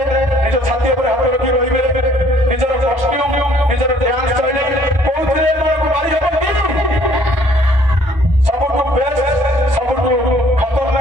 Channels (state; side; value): normal; both; correlation 0.60